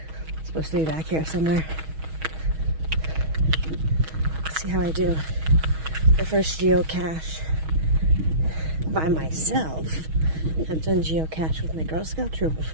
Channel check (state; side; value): late; left; 6.3 ms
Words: It's supposed to be back here somewhere. Let's see how I do. The first geocache by myself. I've done geocache with my Girl Scout troop